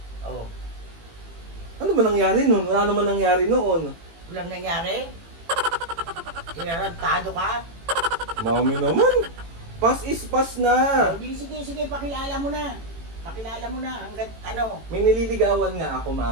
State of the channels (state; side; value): late; left; 18 ms